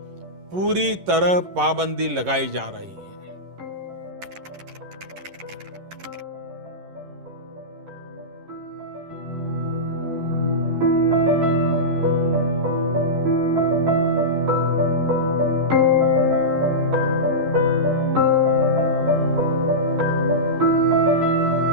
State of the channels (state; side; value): late; left; 11 ms